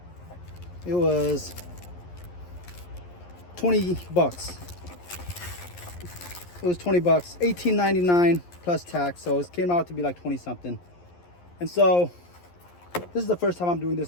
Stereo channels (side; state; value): right; late; 11 ms